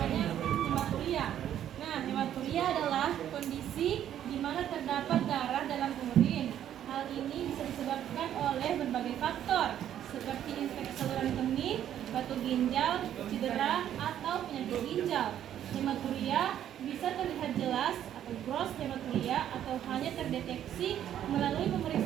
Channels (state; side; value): quieter; left; 10.7 dB